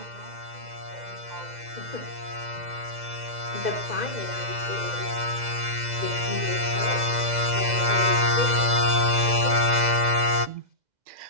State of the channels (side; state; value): left; late; 2.0 ms